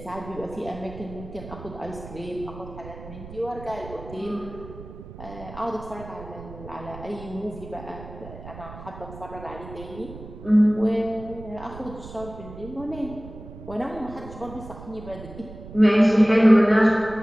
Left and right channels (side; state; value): right; noise; rumble, 14 dB below the sound